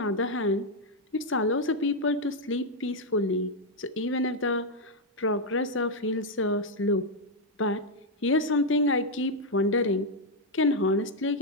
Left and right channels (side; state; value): both; normal; correlation 0.00